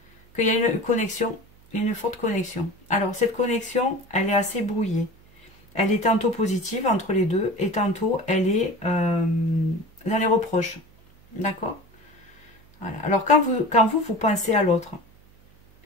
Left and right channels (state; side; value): noise; right; hum, 28 dB below the sound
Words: qu'il y a une connexion, une forte connexion. Alors, cette connexion, elle est assez brouillée. Elle est tantôt positive entre les deux, et tantôt, elle est dans les reproches. D'accord? Voilà. Alors, quand vous pensez à l'autre,